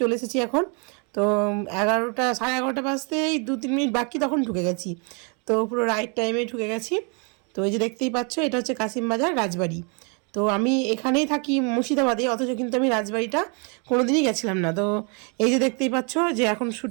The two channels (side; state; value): left; quieter; 35.6 dB